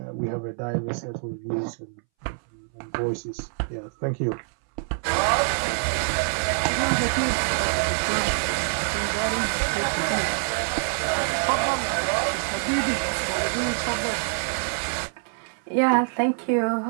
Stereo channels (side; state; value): left; silent; 61 dB below the other